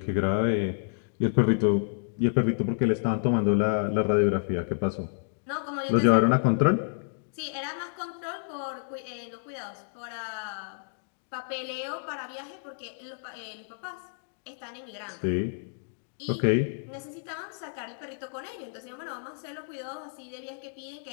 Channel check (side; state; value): right; silent; digital silence